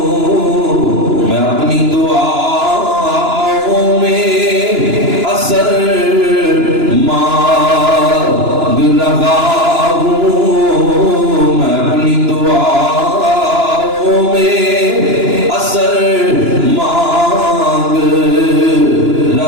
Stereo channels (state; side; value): late; left; 2.9 ms